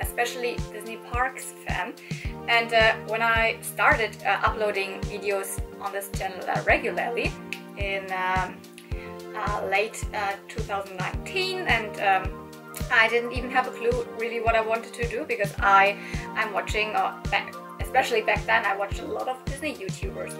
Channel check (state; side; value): identical; both; correlation 1.00